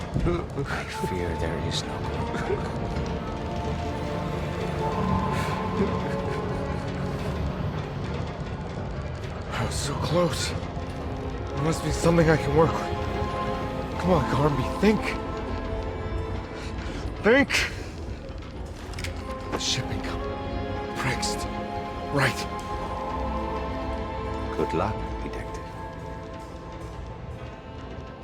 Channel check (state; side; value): identical; both; correlation 1.00